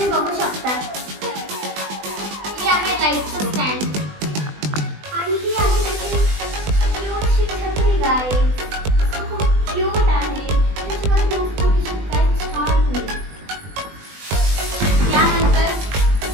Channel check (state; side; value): late; left; 20 ms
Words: बघू शकता. हे आहे लाईटचं स्टँड आणि ही आहे त्याची क्यूटशी छत्री गाईज. खूप क्यूट आहे. त्याच्यावर खूप छोटीशी काय छान होईल. त्यानंतर